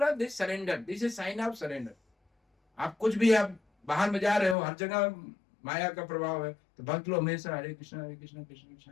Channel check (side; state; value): right; drops out; at 4.5 s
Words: this surrender, this is sine of surrender. आप कुछ भी, आप बाहर में जा रहे हो, हर जगह माया का प्रभाव है, तो भक्त लोग हमेशा हरे कृष्णा कृष्ण कृष्ण हरे